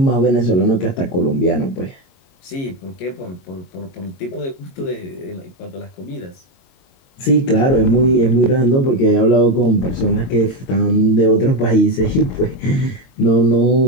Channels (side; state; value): right; late; 22 ms